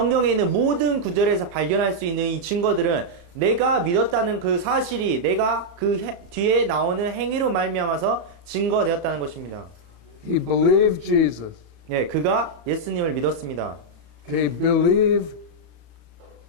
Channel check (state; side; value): late; left; 34 ms